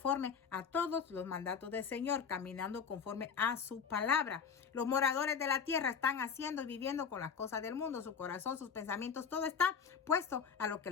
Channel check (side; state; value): right; quieter; 6.5 dB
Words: a todos los mandatos del Señor, caminando conforme a su palabra. Los moradores de la tierra están haciendo y viviendo con las cosas del mundo. Su corazón, sus pensamientos, todo está puesto a lo que